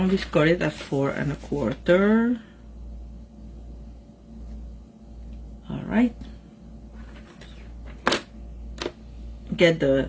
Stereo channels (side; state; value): both; identical; correlation 1.00